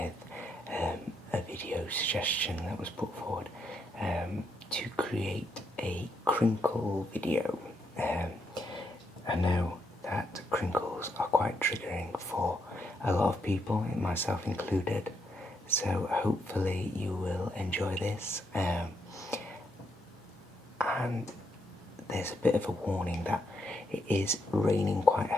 a video suggestion that was put forward to create a crinkle video. I know that crinkles are quite triggering for a lot of people, myself included, so hopefully you will enjoy this. And there's a bit of a warning that it is raining quite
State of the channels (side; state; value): both; normal; correlation 0.78